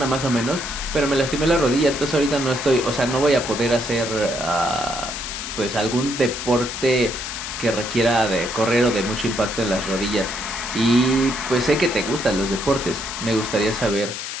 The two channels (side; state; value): left; noise; hiss, 6 dB below the sound